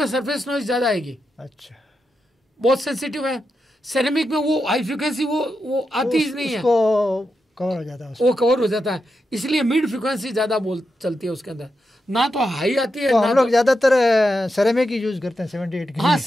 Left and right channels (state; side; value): normal; both; correlation 0.87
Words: सरफेस नॉइज ज़्यादा आएगी। अच्छा, बहुत सेंसिटिव है। सेरेमिक में वो हाई फ्रिक्वेंसी वो आती ही नहीं है, कवर हो जाता है, वो कवर हो जाता है, इसलिए मिड फ्रिक्वेंसी ज़्यादा चलती है उसके अंदर, ना तो हाई आती है। तो हम लोग ज़्यादातर सेरेमिक ही यूज करते हैं 78 की। हाँ